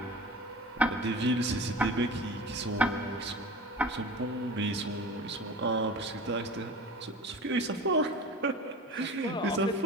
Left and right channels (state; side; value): normal; both; correlation 0.36